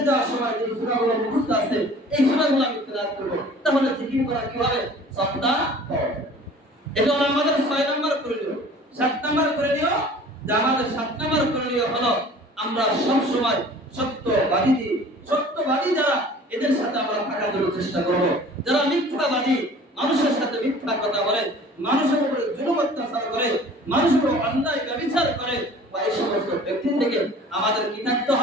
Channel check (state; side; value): normal; both; correlation 0.47